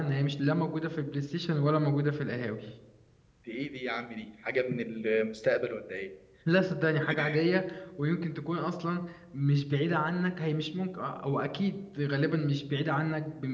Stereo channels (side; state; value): both; identical; correlation 1.00